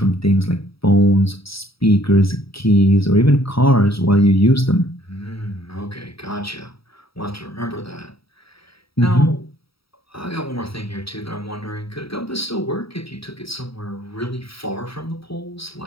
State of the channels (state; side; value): late; right; 0.76 ms